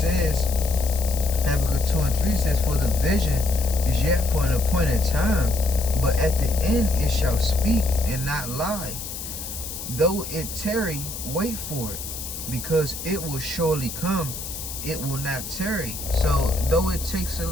Habakkuk 2 and 3 says, "For the vision is yet for an appointed time, but at the end it shall speak and not lie. Though it tarry, wait for it, because it will surely come, it will not tarry." So though it takes a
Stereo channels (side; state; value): left; noise; hiss, 8 dB below the sound